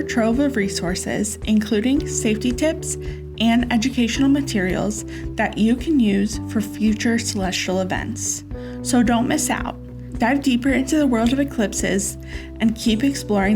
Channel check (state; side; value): identical; both; correlation 1.00